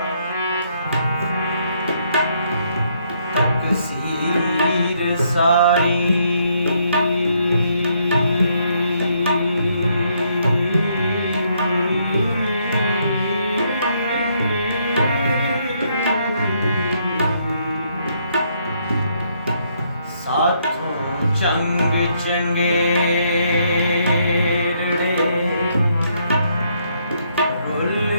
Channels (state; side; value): inverted; both; correlation -0.72